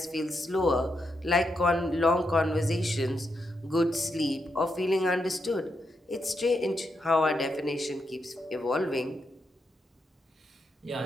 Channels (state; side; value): normal; both; correlation 0.83